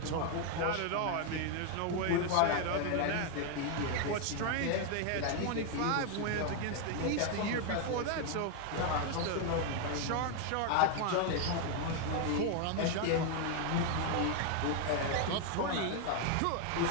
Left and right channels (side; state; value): both; different; correlation 0.00